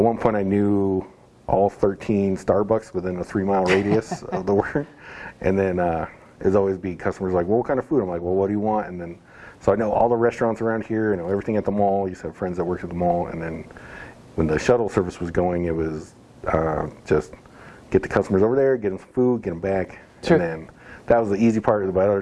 point I knew all 13 Starbucks within a 3-mile radius of the work. And then it'd always be customers well, what kind of food? I'm well, what do you want? And then, so I know all the restaurants around here, I know everything at the mall. I used to have friends that worked at the mall. And then when the shuttle service was going, it was just get the customers over there, get them some food, get them back. Sure. And then that was the easy part. But other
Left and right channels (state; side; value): identical; both; correlation 1.00